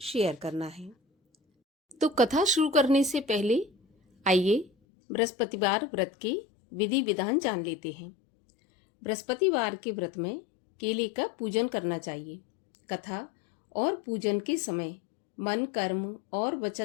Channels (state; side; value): drops out; right; at 4.7 s